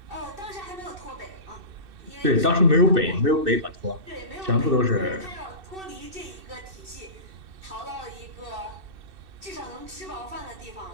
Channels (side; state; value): left; late; 2.6 ms